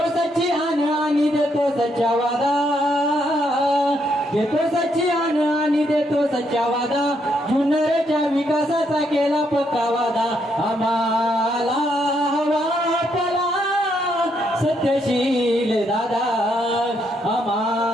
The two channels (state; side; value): normal; both; correlation 0.75